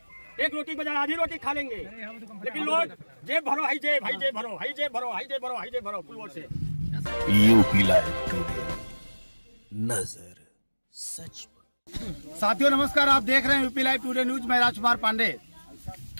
एक रोटी बजाय आधी रोटी खा लेंगे, लेकिन लोग जेब भरो, हाई जेब, हाई जेब भरो, हाई जेब भरो, हाई जेब भरो, हाई जेब भरो पुलवर से। यूपी लाइव टुडे, नजर सच पर। साथियों नमस्कार, आप देख रहे हैं यूपी लाइव टुडे न्यूज। मैं राजकुमार पांडे।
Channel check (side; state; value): both; inverted; correlation -1.00